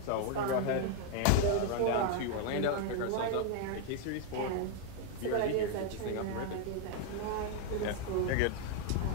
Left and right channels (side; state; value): both; different; correlation 0.00